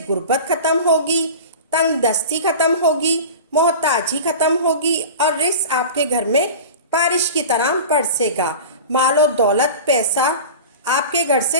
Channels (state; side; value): inverted; both; correlation -0.33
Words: غربت ختم ہوگی، تنگ دستی ختم ہوگی، محتاجی ختم ہوگی اور رزق آپ کے گھر میں بارش کی طرح برسے گا۔ مال و دولت، پیسہ آپ کے گھر سے